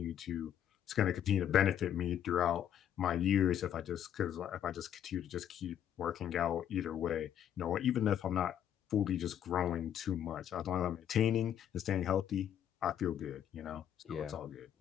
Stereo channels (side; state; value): right; quieter; 10.0 dB